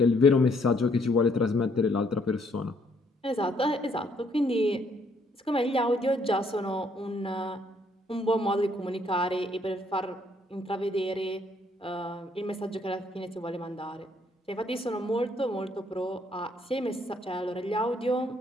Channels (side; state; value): both; normal; correlation 0.68